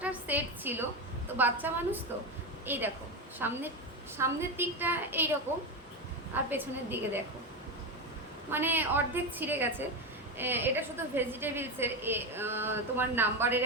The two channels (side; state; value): both; normal; correlation 0.14